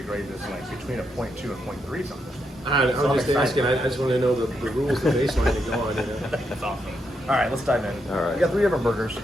grade this like between a 0.2 and 0.3 something. I was So I'm just excited. asking. I just want to know the rules, the baseline to go on. That's awesome. All right, let's dive in. All right. We got 3 different burgers,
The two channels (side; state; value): both; normal; correlation 0.81